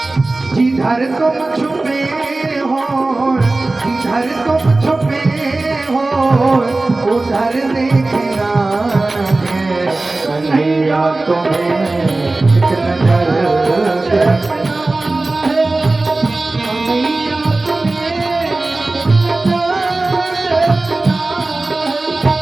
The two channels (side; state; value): left; quieter; 3.1 dB